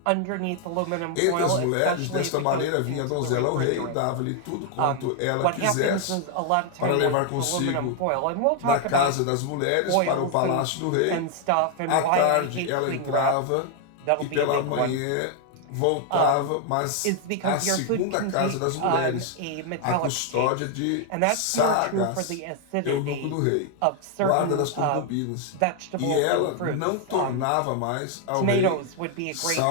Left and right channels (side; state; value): both; different; correlation 0.00